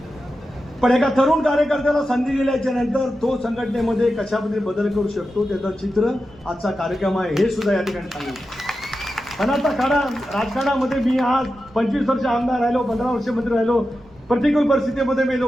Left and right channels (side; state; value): both; normal; correlation 0.91